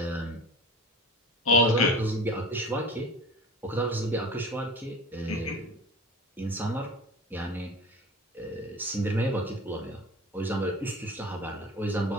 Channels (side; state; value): both; normal; correlation 0.35